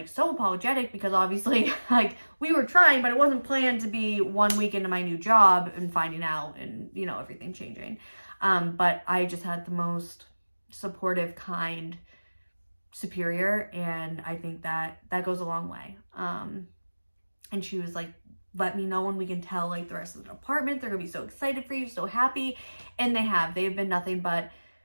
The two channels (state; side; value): inverted; both; correlation -1.00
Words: so apologetic because obviously like we were trying, but it wasn't planned to be 1 week into my new job and finding out and, you know, everything changing. But I just had the most supportive, kind superior. And I think that goes a long way. And she was like, let me know when we can tell like the rest of the department. They're gonna be so excited for you, so happy. And they've been nothing but